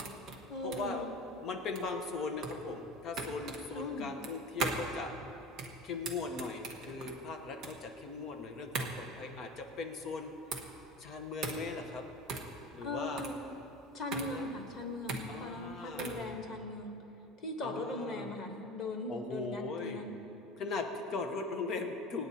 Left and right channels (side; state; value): both; normal; correlation 0.33